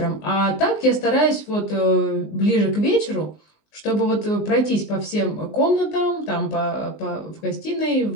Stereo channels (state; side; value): late; right; 19 ms